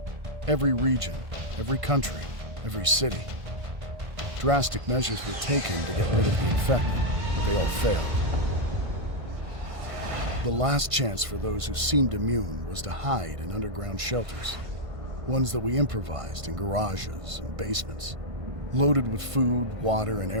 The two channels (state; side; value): late; left; 1.5 ms